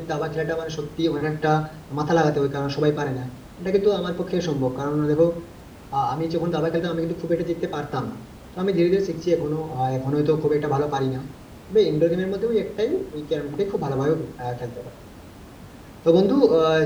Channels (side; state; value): both; identical; correlation 1.00